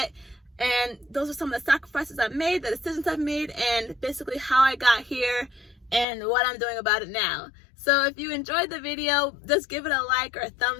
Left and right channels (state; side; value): drops out; right; at 6.1 s